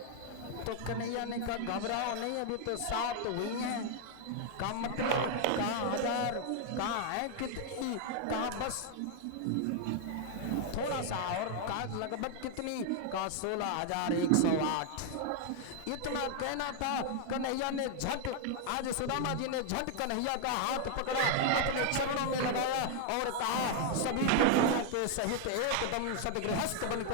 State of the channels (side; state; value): both; different; correlation 0.00